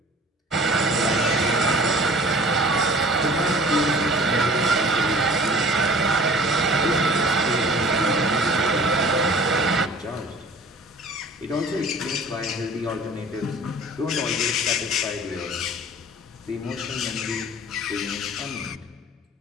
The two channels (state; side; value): normal; both; correlation 0.46